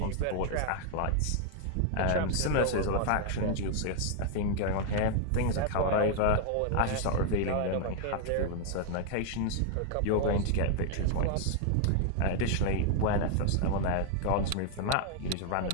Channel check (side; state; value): both; different; correlation 0.00